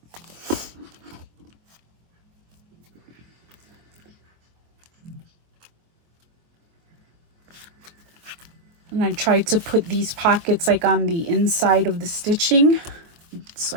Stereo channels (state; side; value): late; left; 24 ms